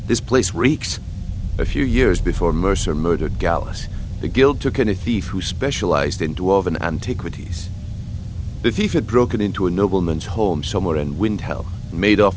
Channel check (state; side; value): identical; both; correlation 1.00